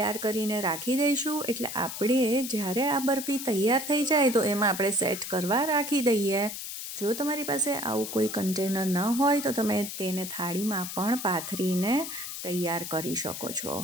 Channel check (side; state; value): left; noise; hiss, 7 dB below the sound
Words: કરીને રાખી દઈશું, એટલે આપણે જ્યારે આ બરફી તૈયાર થઈ જાય તો એમાં આપણે સેટ કરવા રાખી દઈએ. જો તમારી પાસે આવું કોઈ કન્ટેનર ન હોય તો તમે તેને થાળીમાં પણ પાથરીને તૈયાર કરી શકો છો.